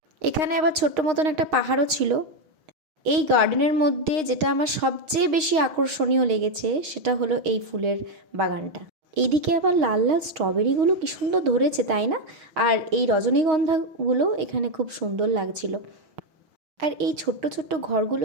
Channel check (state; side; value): late; left; 6.4 ms